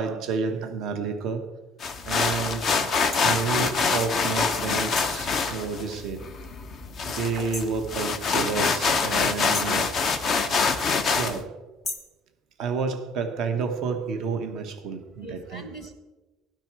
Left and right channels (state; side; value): normal; both; correlation 0.56